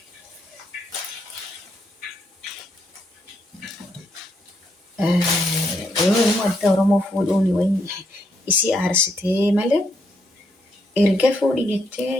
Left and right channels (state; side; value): normal; both; correlation 0.76